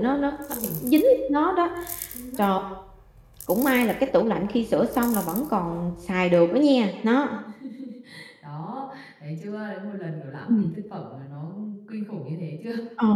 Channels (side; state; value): both; identical; correlation 1.00